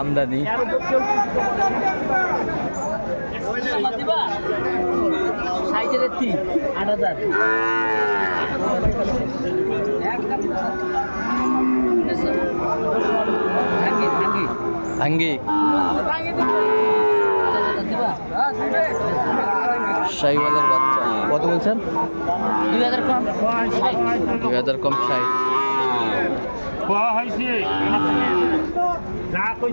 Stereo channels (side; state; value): both; inverted; correlation -1.00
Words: আমদানি। সাইকেলের 8,000। ভাঙ্গি শাহিওয়ালের বাচ্চা কত বলছেন? 2,000 কম। 2,000 কম। 60।